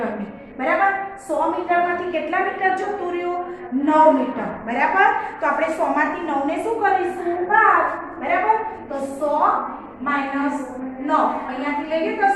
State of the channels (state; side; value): identical; both; correlation 1.00